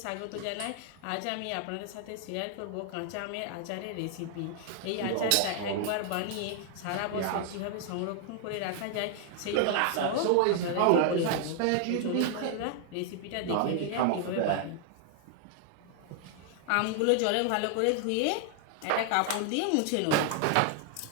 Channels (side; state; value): both; different; correlation 0.00